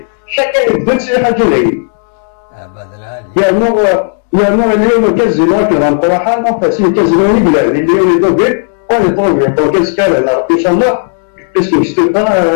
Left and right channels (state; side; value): silent; right; digital silence